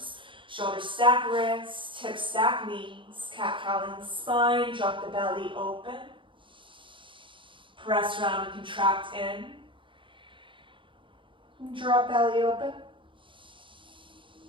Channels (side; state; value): left; late; 0.24 ms